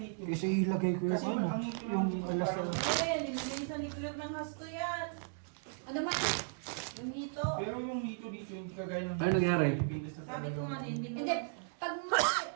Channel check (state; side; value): silent; left; digital silence